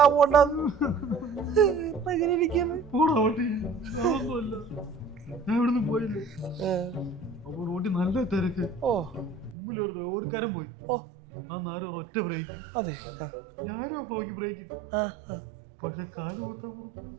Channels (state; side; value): drops out; left; at 9.6 s